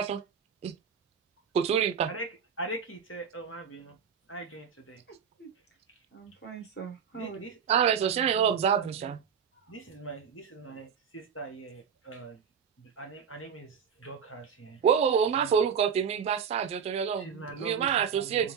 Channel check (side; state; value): left; quieter; 7.2 dB